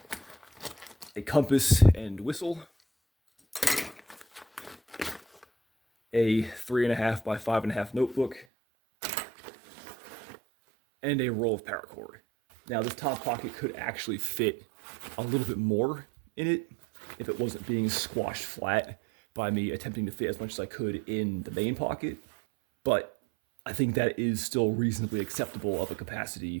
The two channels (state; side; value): drops out; left; at 8.5 s